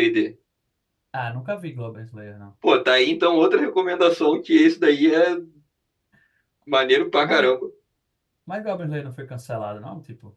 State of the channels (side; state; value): both; identical; correlation 1.00